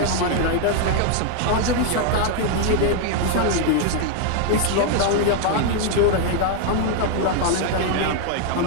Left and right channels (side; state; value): both; different; correlation 0.00